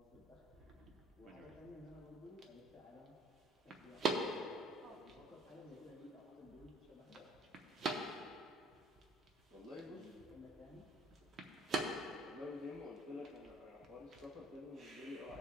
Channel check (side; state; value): both; normal; correlation 0.56